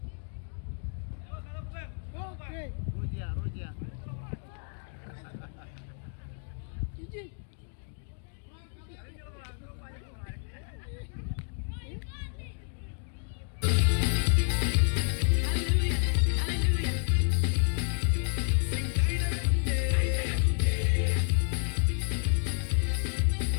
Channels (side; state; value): right; silent; 55 dB below the other